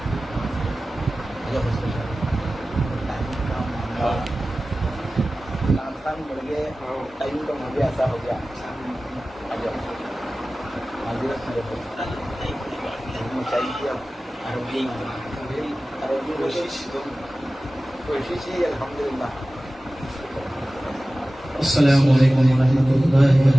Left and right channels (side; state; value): both; normal; correlation 0.96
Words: ٹائم کا مجھے ایسا ہو گیا کوشش ہی الحمدللہ۔ السلام علیکم ورحمۃ اللہ